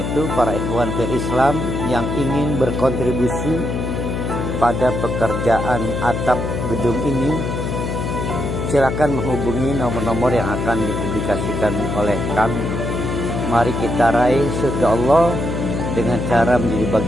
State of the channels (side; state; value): left; noise; hum, 3 dB below the sound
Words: para ikhwan fil Islam yang ingin berkontribusi pada pekerjaan atap gedung ini, silakan menghubungi nomor-nomor yang akan dipublikasikan oleh kami. Mari kita raih surga Allah dengan cara menjadi